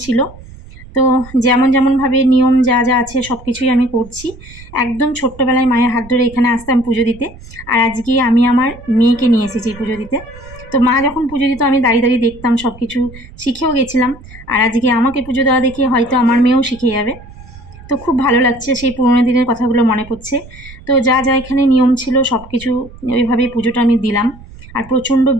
ছিল। তো যেমনভাবে নিয়ম যা যা আছে সব কিছুই আমি করছি। একদম ছোট্টবেলায় মায়ের হাত ধরে এখানে আসতাম পুজো দিতে, আর আজকে আমি আমার মেয়েকে নিয়ে এসেছি পুজো দিতে। তো মা যখন পুজো দিত আমি দাঁড়িয়ে দাঁড়িয়ে দেখতাম, সব কিছু শিখেও গেছিলাম। আর আজকে আমাকে পুজো দেওয়া দেখে হয়তো আমার মেয়েও শিখে যাবে। তো খুব ভালো লাগছে, সেই পুরোনো দিনের কথাগুলো মনে পড়ছে। তো যা যা এখানে নিয়ম ছিল সব কিছু ওইভাবেই পুজোটা আমি দিলাম। আর প্রচণ্ড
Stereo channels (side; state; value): right; noise; rumble, 19 dB below the sound